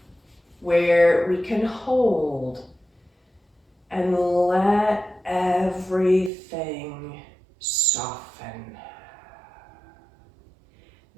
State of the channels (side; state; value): left; drops out; at 6.3 s